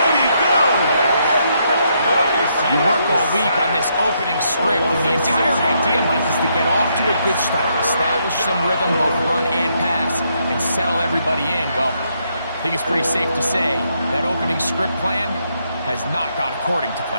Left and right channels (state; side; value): inverted; both; correlation -0.76